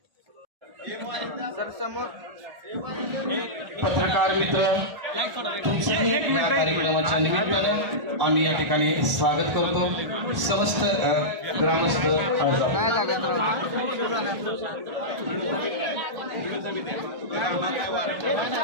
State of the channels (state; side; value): late; left; 1.4 ms